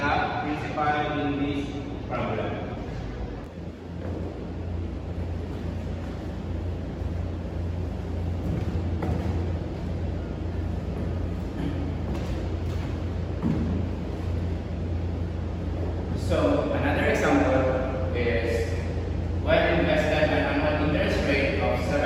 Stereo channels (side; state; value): both; identical; correlation 1.00